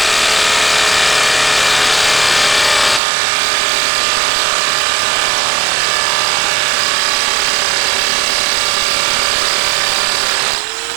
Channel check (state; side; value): drops out; left; at 3.0 s